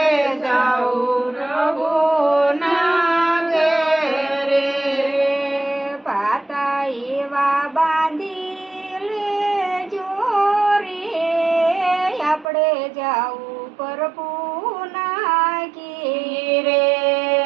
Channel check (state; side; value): drops out; left; at 12.5 s